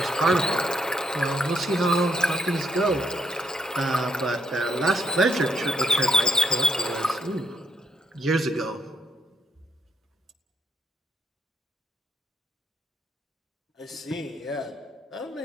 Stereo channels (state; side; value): normal; both; correlation 0.75